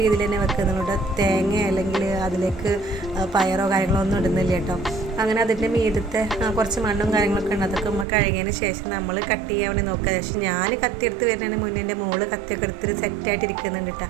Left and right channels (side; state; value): left; drops out; at 8.1 s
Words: രീതിയിൽ തന്നെ വെക്കുന്നുണ്ട്. തേങ്ങ അല്ലെങ്കിൽ അതിലേക്ക് പയറോ കാര്യങ്ങളോ ഒന്നും ഇടുന്നില്ല കേട്ടോ. അങ്ങനെ അതിൻ്റെ മീദത്തെ കുറച്ച് മണ്ണും കാര്യങ്ങളൊക്കെ ഉണ്ട്. അതൊക്കെ നമ്മൾ കഴുകിയതിന് ശേഷം നമ്മൾ കട്ട് ചെയ്യാൻ വേണ്ടി നോക്കുക. പക്ഷേ ഞാൻ കത്തിയെടുത്ത് വരുന്നതിന് മുന്നേ എൻ്റെ മോള് കത്തിയൊക്കെ എടുത്തിട്ട് സെറ്റായിട്ട് ഇരിക്കുന്നുണ്ട് കേട്ടോ.